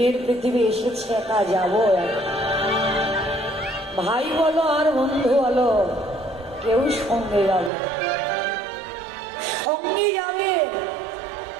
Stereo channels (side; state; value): left; drops out; at 7.7 s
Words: পৃথিবী এসেছে, একা যাবো। ভাই বলো আর বন্ধু বলো, কেউ সঙ্গে যাবে, সঙ্গে যাবে।